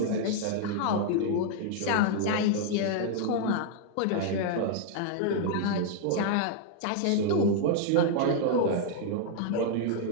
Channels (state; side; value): different; both; correlation -0.01